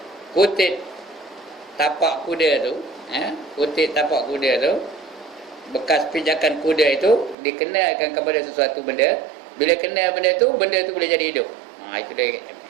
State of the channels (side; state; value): left; drops out; at 7.4 s